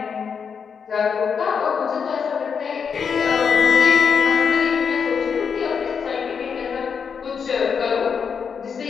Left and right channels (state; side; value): quieter; right; 6.4 dB